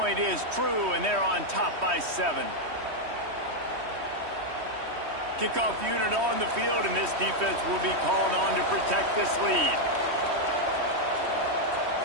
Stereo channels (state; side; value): late; left; 3.1 ms